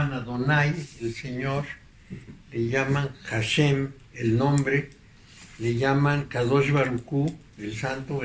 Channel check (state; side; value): identical; both; correlation 1.00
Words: Adonai, el Señor, le llaman Hashem, el nombre, le llaman Kadosh Baruj Hu, el santo